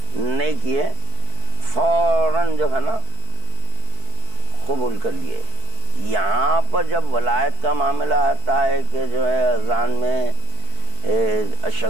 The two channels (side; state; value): left; late; 4.6 ms